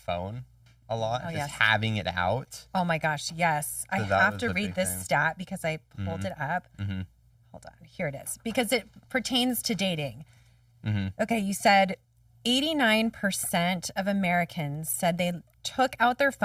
a lot, having it out. Oh my gosh, yes. So I have to read this stat because I pulled it up. Hold on, here it is. Because it pertains to dating. Okay, you said 89% of Americans said they took out their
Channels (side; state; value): both; identical; correlation 1.00